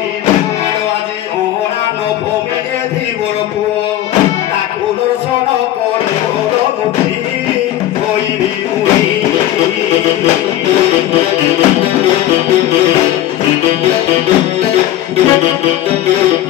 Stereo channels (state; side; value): quieter; right; 13.1 dB